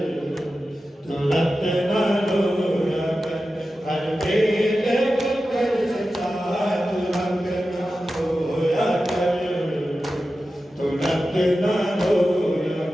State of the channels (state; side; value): normal; both; correlation 0.93